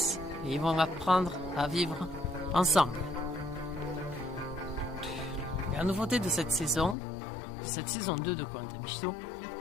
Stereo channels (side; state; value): right; drops out; at 7.0 s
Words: et ils vont apprendre à vivre ensemble. La nouveauté de cette saison 2 de Koh-Lanta Mishito,